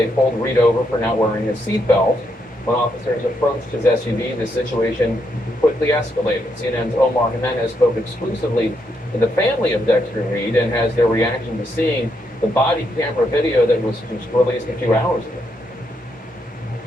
pulled Reed over for not wearing his seatbelt. When officers approached his SUV, the situation quickly escalated. CNN's Omar Jimenez spoke exclusively to the family of Dexter Reed and has their reaction to seeing the body camera video that was released a few hours ago.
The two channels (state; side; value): normal; both; correlation 0.78